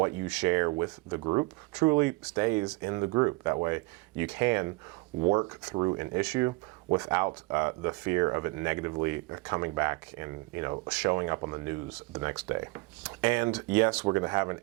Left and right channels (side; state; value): left; quieter; 25.1 dB